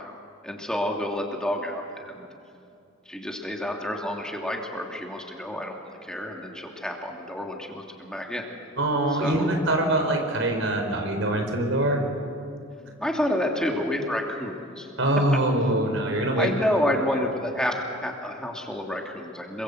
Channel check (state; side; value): normal; both; correlation 0.43